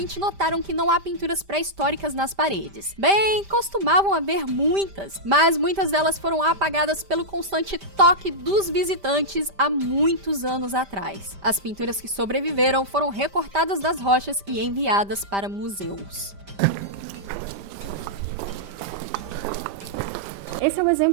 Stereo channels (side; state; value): left; late; 5.1 ms